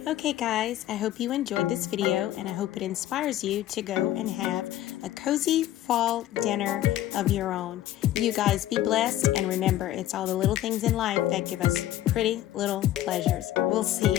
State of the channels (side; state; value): right; quieter; 13.4 dB